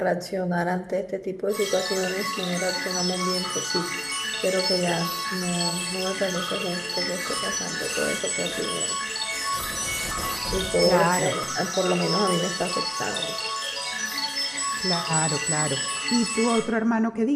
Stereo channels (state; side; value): identical; both; correlation 1.00